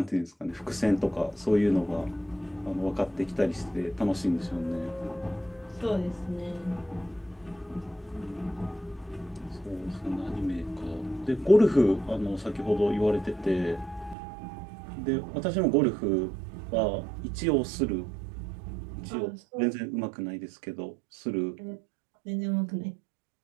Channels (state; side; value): drops out; left; at 14.2 s